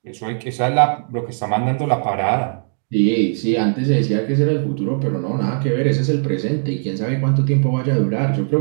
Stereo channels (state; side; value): silent; left; digital silence